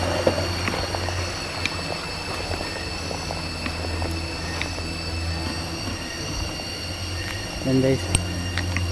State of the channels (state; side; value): identical; both; correlation 1.00